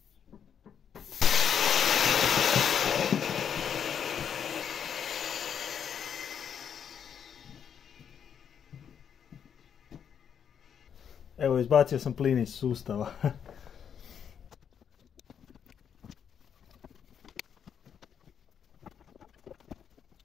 Evo, izbacio sam plin iz sustava.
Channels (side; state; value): right; quieter; 8.0 dB